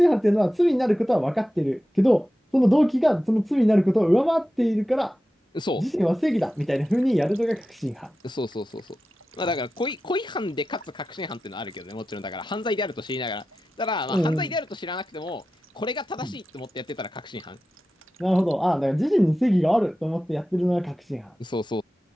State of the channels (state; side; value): normal; both; correlation 0.93